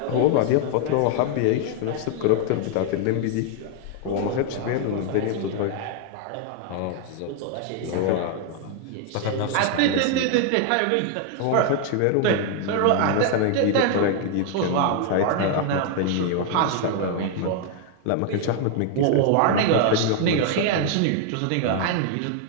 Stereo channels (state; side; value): different; both; correlation 0.00